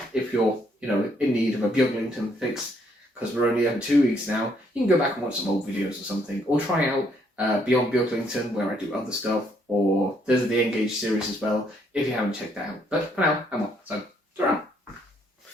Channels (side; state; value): both; normal; correlation 0.70